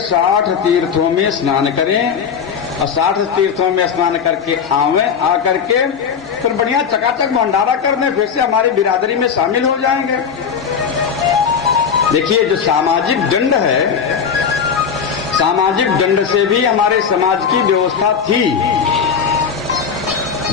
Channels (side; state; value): right; quieter; 6.7 dB